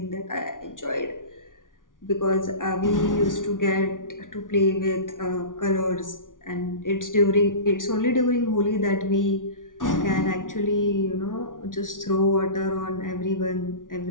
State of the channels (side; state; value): right; late; 0.88 ms